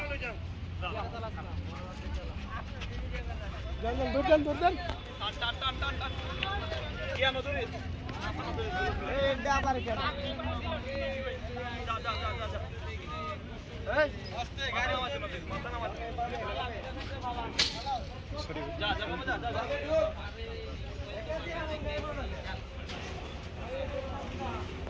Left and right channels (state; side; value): identical; both; correlation 1.00